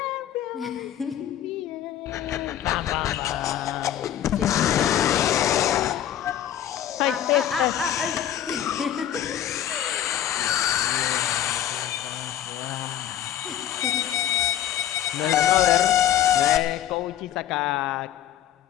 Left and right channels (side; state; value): right; quieter; 11.2 dB